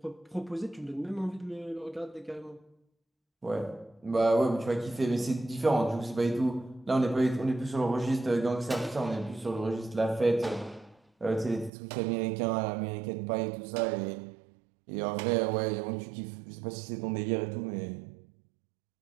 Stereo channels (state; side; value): drops out; left; at 11.7 s